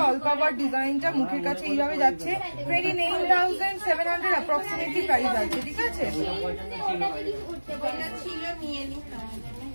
অল কভার ডিজাইনটা। মুখের কাছে এইভাবে যাচ্ছে। 29,700 অ্যাপ্রক্সিমেটলি প্রাইস আছে, ঠিক আছে।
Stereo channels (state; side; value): inverted; both; correlation -1.00